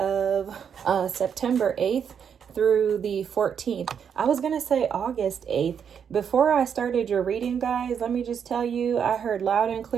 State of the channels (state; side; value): quieter; left; 7.6 dB